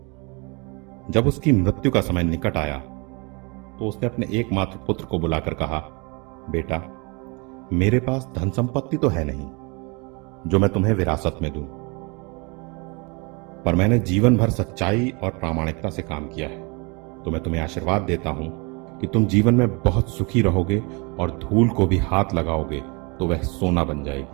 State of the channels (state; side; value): quieter; left; 29.8 dB